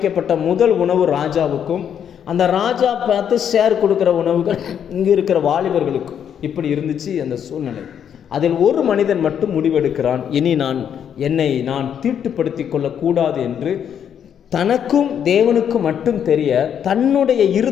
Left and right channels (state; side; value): quieter; right; 8.7 dB